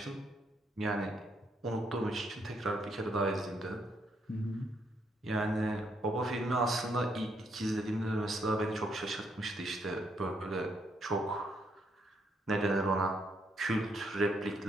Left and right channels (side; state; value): both; normal; correlation 0.74